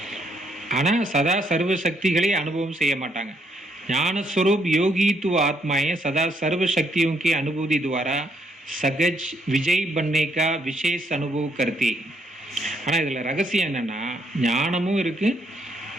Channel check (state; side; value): normal; both; correlation 0.73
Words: ஆனால் சதா சர்வ சக்திகளை அனுபவம் செய்ய மாட்டாங்க. ஞானஸ்வரூப் யோகித்துவ ஆத்மாएं सदा सर्व शक्तियों की अनुभूति द्वारा सहज विजय बनने का विशेष अनुभव करती. ஆனால் இதில் ரகசியம் என்னென்னா, ஞானமும் இருக்குது,